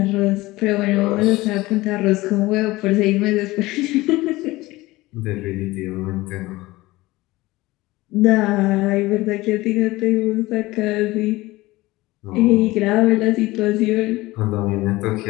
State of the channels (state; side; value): quieter; right; 19.5 dB